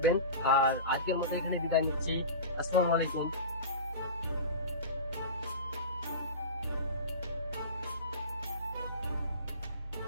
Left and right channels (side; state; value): both; inverted; correlation -0.31